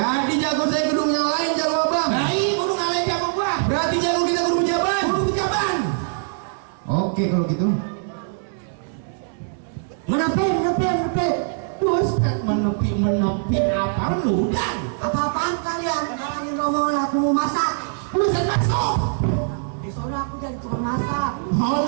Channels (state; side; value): silent; left; 64 dB below the other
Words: jago saya kudu ngalahin jago abang. Nah iya kudu ngalahin jago gua. Berarti jago kita kudu pejabat. Kudu pejabat. Oke kalau gitu. Menepi. Terus kan menepi apa lu dan? Apa-apaan kalian? Ngalahin rombongan aku mau masak. Lu bisa masuk. Soalnya aku jadi tukang masak. Oh